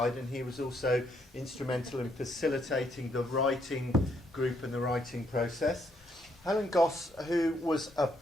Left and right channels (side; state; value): both; normal; correlation 0.73